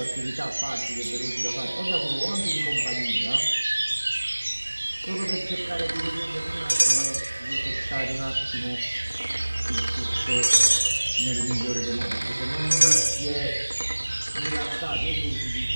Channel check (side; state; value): both; inverted; correlation -1.00